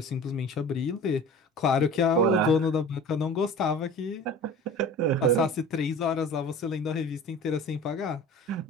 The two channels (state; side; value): normal; both; correlation 0.39